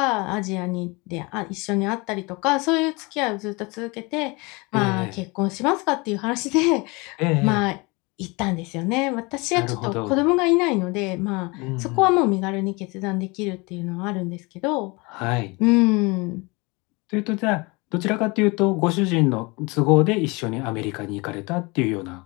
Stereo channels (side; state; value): right; quieter; 26.4 dB